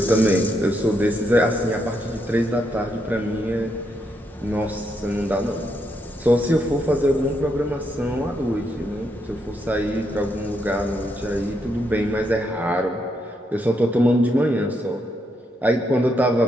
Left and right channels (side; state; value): both; normal; correlation 0.78